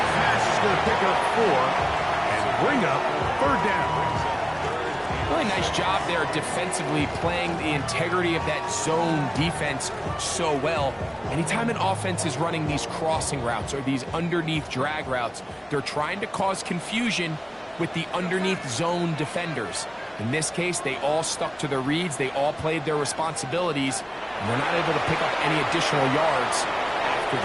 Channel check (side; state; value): both; identical; correlation 1.00